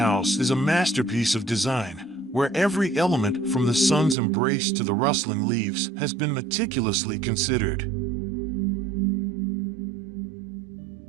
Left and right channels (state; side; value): drops out; left; at 4.2 s